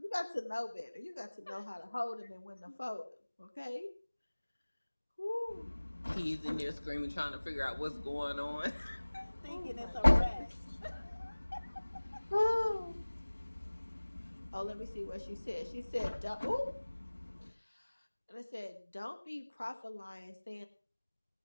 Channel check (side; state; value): both; inverted; correlation -1.00